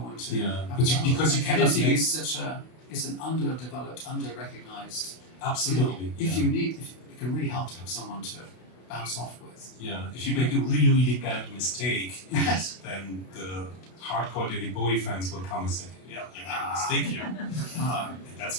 to. Because you cannot editing make. It's an underdeveloped, under-recognized. Absolutely. If it can really help to have someone to bounce off with. Yeah, if you make a really bad mistake, then the hardcore David Bowie fans will come and say, "Yeah, you made a mistake here," and that's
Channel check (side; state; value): right; late; 32 ms